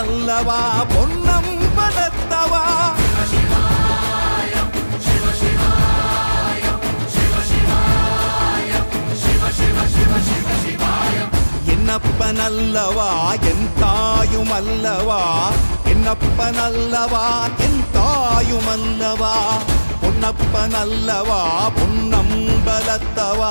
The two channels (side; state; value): both; inverted; correlation -1.00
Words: பொன்னம்பலத்தவா. என்னப்பனல்லவா என் தாயுமல்லவா, என்னப்பனல்லவா என் தாயுமல்லவா, பொன்னப்பனல்லவா